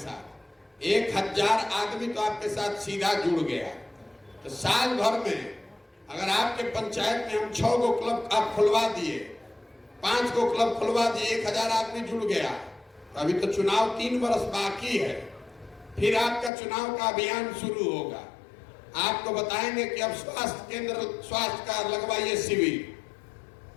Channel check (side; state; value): right; drops out; at 16.5 s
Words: 1000 आदमी तो आपके साथ सीधा जुड़ गया। तो साल भर में अगर आपके पंचायत में हम 6 गो क्लब आप खुलवा दिए, 5 गो क्लब खुलवा दिए, 1000 आदमी जुड़ गया, तो अभी तो चुनाव 3 वर्ष बाकी है। फिर आपका चुनाव का अभियान शुरू होगा। आपको बताएंगे कि अब स्वास्थ्य केंद्र, स्वास्थ्य का लगवाइए शिविर,